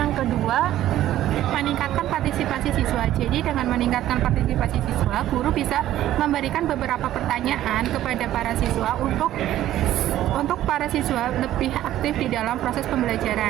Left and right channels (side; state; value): left; quieter; 13.2 dB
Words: kedua, meningkatkan partisipasi siswa. Jadi dengan meningkatkan partisipasi siswa, guru bisa memberikan beberapa pertanyaan kepada para siswa untuk para siswa lebih aktif di dalam proses pembelajaran.